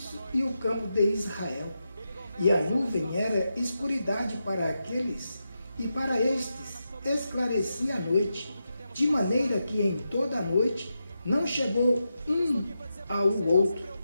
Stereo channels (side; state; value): both; inverted; correlation -0.88